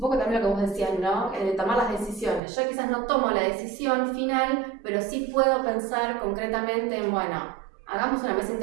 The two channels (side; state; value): left; drops out; at 2.4 s